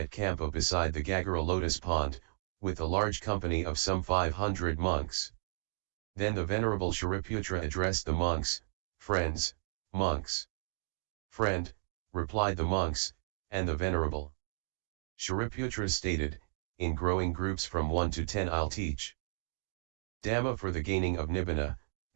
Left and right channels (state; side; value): silent; left; digital silence